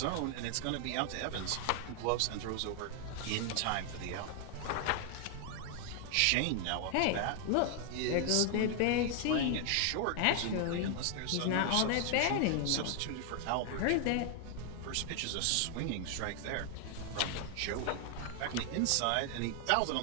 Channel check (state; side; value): different; both; correlation 0.00